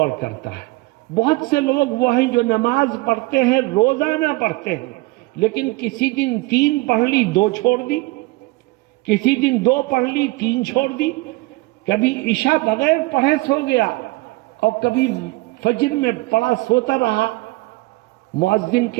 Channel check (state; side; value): quieter; left; 22.1 dB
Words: کرتا ہے۔ بہت سے لوگ وہ ہیں جو نماز پڑھتے ہیں، روزانہ پڑھتے ہیں، لیکن کسی دن 3 پڑھ لی 2 چھوڑ دی، کسی دن 2 پڑھ لی 3 چھوڑ دی، کبھی عشاء بغیر پڑھے سو گیا، اور کبھی فجر میں پڑھا سوتا رہا۔ مؤذن